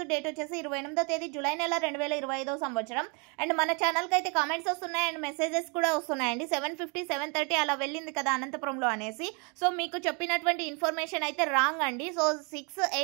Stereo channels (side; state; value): left; quieter; 34.2 dB